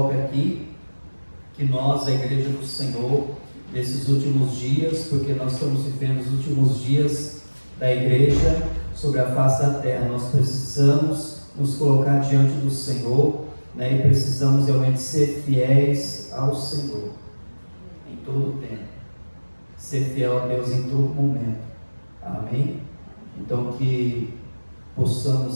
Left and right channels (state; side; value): inverted; both; correlation -1.00